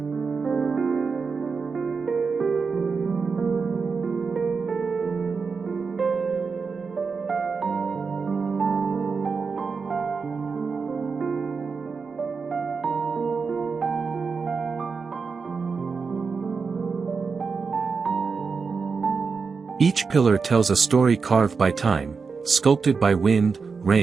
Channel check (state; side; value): quieter; left; 5.1 dB